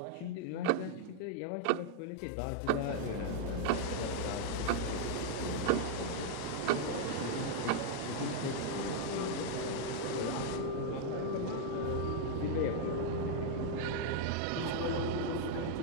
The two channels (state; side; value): different; both; correlation 0.00